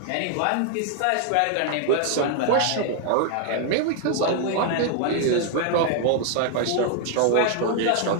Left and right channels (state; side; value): different; both; correlation 0.00